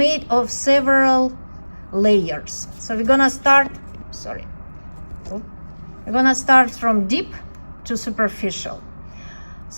of several layers. So we're gonna start, we're gonna start from deep to superficial.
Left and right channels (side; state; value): both; inverted; correlation -1.00